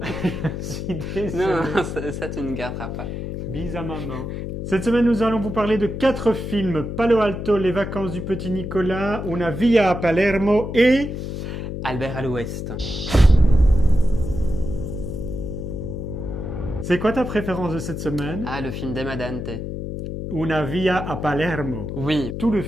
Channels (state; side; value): noise; left; hum, 5 dB below the sound